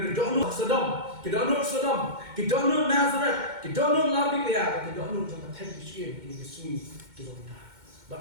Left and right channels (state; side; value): late; left; 2.1 ms